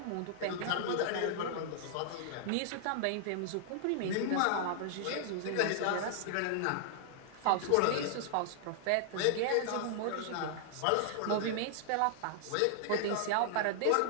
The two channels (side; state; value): both; different; correlation -0.01